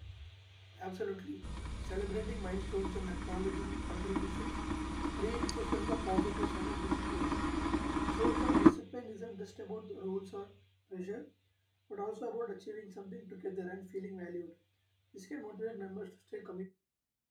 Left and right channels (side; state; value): both; identical; correlation 1.00